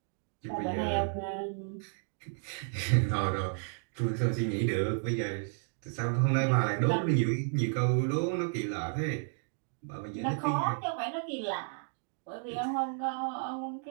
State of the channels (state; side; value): silent; left; 56 dB below the other